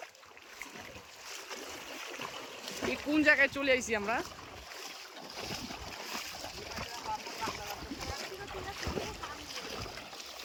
এই কোন জায়গায় চলে আইছি আমরা।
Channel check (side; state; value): both; identical; correlation 1.00